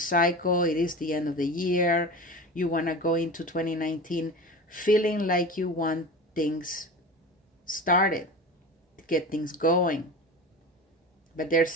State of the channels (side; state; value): both; normal; correlation 0.31